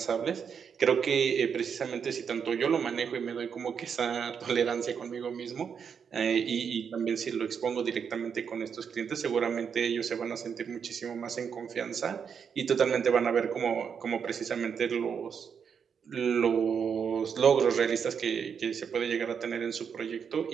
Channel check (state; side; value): quieter; left; 6.9 dB